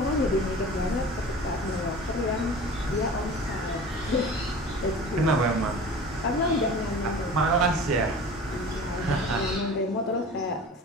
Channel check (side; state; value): both; normal; correlation 0.39